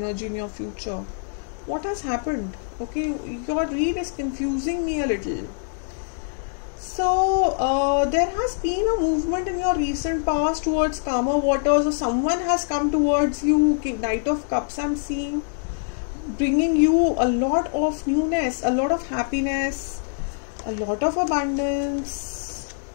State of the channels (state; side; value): silent; right; 62 dB below the other